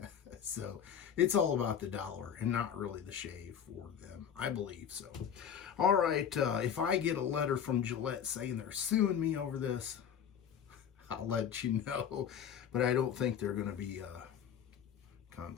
So it's all about the dollar and not really the shave for them, I believe. So all right, if I get a letter from Gillette saying they're suing me over this, I'll let you know, but I don't think they're going to be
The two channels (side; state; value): right; quieter; 8.3 dB